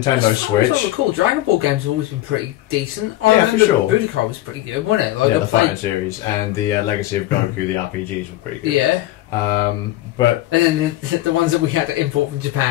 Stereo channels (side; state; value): right; quieter; 15.5 dB